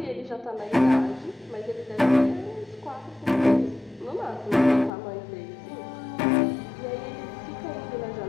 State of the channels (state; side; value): drops out; right; at 4.9 s